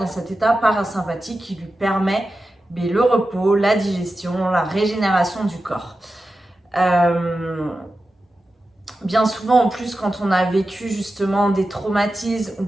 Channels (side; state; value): both; normal; correlation 0.92